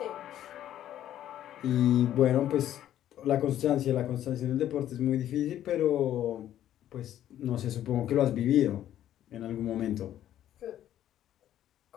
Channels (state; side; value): quieter; right; 11.8 dB